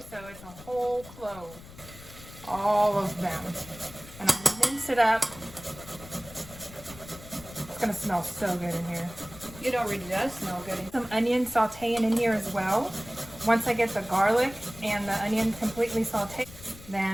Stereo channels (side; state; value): left; noise; rumble, 17 dB below the sound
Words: so it's a whole clove. All of them. And I'm gonna mince it up. It's gonna smell so good in here. It already does smell good. Some onion sauteing in here as well. Once I get the garlic and the onion completely sauteed,